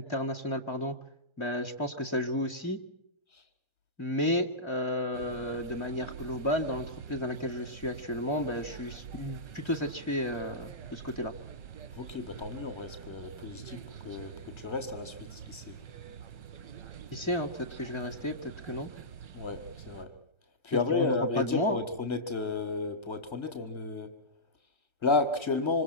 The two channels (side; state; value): right; late; 1.3 ms